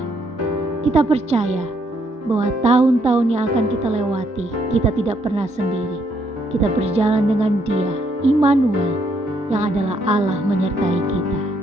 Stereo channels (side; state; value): both; normal; correlation 0.72